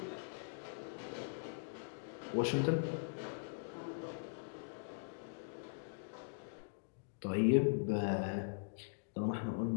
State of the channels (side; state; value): right; silent; digital silence